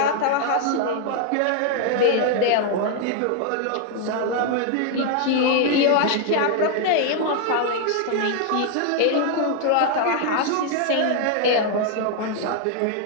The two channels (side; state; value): both; different; correlation 0.00